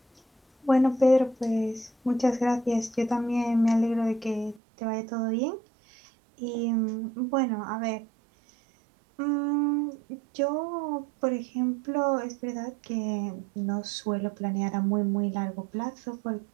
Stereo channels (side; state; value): left; drops out; at 4.6 s